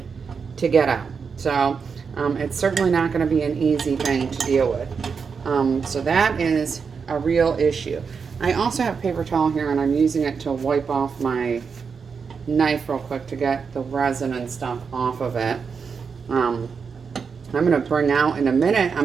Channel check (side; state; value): left; quieter; 5.7 dB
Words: to get out. So it's certainly not going to be an easy thing to deal with. So that is a real issue. I also have paper towel here and I'm using it to wipe off my knife real quick to get the resin and stuff off of it. I'm going to bring out in a minute, I'm